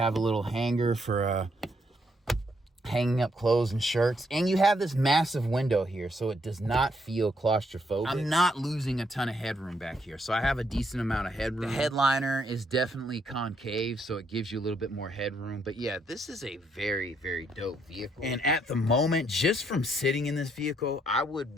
a little hanger for hanging up clothes and shirts, and you have this massive window here, so it does not feel claustrophobic. I'm not losing a ton of headroom back here, so I have a decent amount of headroom. The headliner is definitely concave, so it gives you a little bit more headroom. But yeah, this is a very, very dope vehicle. And at the moment, just from sitting in this vehicle, I would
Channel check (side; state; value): both; normal; correlation 0.73